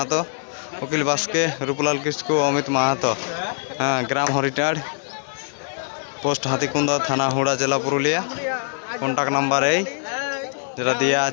অখিল বাস্কে, রূপলাল কিস্কু, অমিত মাহাতো, হ্যাঁ, গ্রাম হরিটাড়, পোস্ট হাতিকুন্দা, থানা হুড়া, জেলা পুরুলিয়া। কন্ট্যাক্ট নাম্বার এই যেটা দেওয়া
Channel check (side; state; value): right; silent; digital silence